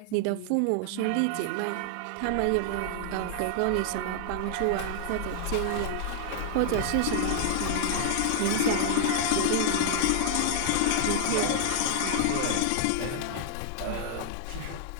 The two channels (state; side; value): different; both; correlation 0.00